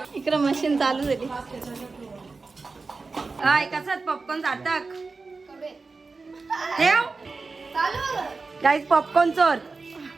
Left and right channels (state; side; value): quieter; left; 4.1 dB